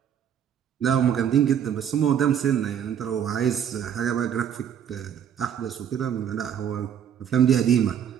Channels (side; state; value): left; quieter; 8.9 dB